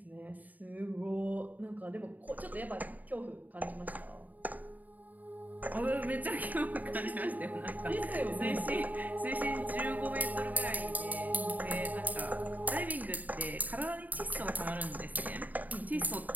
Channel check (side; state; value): left; late; 0.080 ms